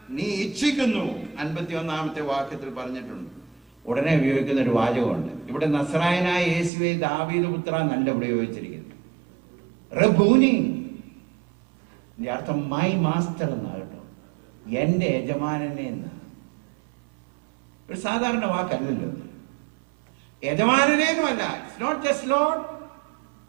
നീ ഇച്ഛിക്കുന്നു? 51-ാമത്തെ വാക്യത്തിൽ പറഞ്ഞിട്ടുണ്ട്. ഉടനെ ഉപയോഗിക്കുന്ന ഒരു വാചകമുണ്ട്. ഇവിടെ നസ്രായനായ യേശുവെ ദാവീദ് പുത്ര എന്നല്ല ഇവിടെ ഉപയോഗിച്ചിരിക്കുന്നത്. റബ്ബൂനി. ഇതിന്റെ അർത്ഥം മൈ മാസ്റ്റർ എന്നാ കേട്ടോ, എന്റെ യജമാനനെ എന്ന്. ഒരു സാധാരണ വാക്കല്ലല്ലോ. യജമാനനേന്നുമല്ല. It's not just Lord,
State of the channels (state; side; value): drops out; left; at 6.7 s